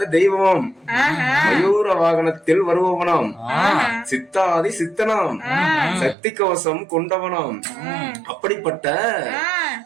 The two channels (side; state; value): left; drops out; at 6.2 s